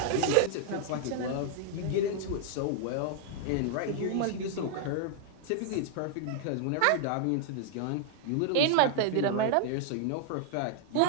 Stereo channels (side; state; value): both; different; correlation -0.01